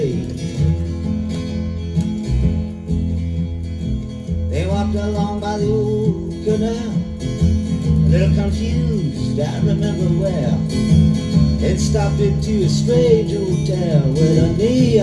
They walked along by the old canal, a little confused, I remember well, and stopped into a strange hotel with a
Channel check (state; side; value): identical; both; correlation 1.00